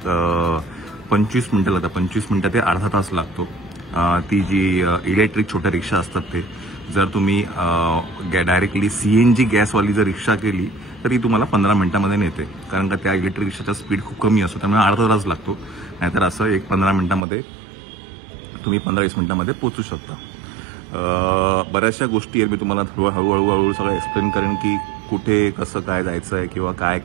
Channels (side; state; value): left; drops out; at 17.2 s